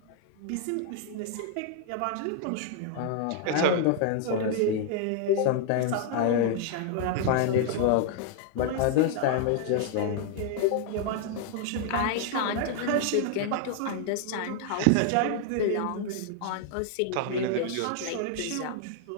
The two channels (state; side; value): different; both; correlation 0.00